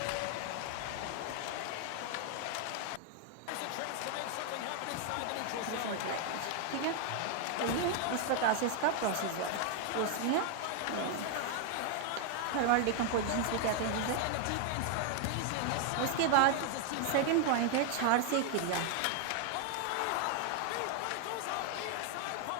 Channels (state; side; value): different; both; correlation 0.00